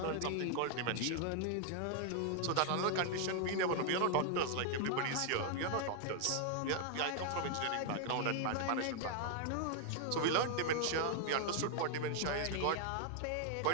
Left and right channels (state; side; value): different; both; correlation 0.00